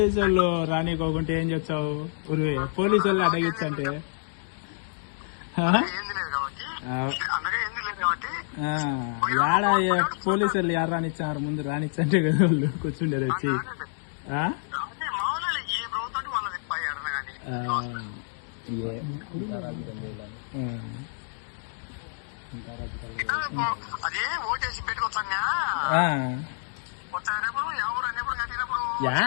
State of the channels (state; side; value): silent; right; digital silence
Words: వాళ్ళు రానికోకుంటే ఏం చెప్తావు? ఉరివే పోలీసు వాళ్ళు అడగిచ్చంటే యాడ పోలీసు వాళ్ళు యారు రానిచ్చారు? ముందు రానిచ్చంటే కదా వాళ్ళు కూర్చుండేది వచ్చి.